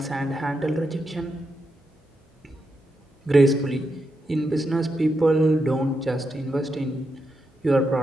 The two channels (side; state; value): both; normal; correlation 0.84